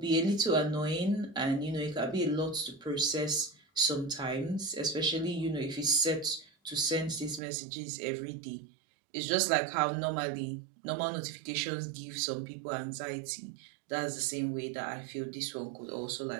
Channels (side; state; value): left; drops out; at 7.4 s